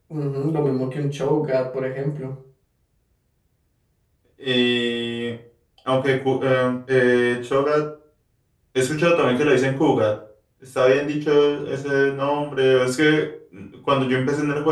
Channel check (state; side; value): identical; both; correlation 1.00